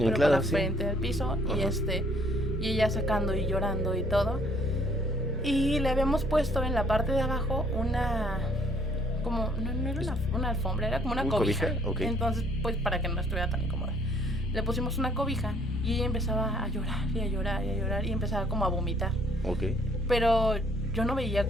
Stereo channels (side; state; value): both; normal; correlation 0.62